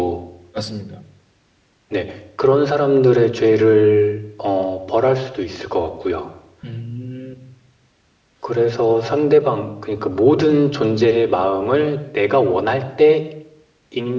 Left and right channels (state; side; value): identical; both; correlation 1.00